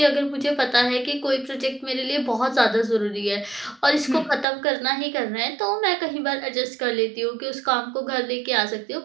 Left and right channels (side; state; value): left; drops out; at 4.5 s